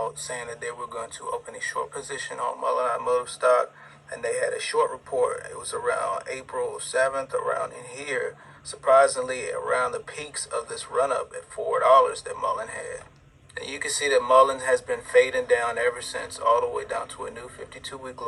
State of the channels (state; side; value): identical; both; correlation 1.00